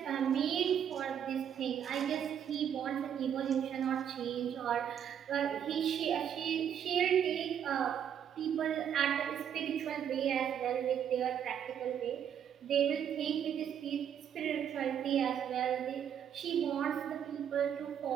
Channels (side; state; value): left; quieter; 8.9 dB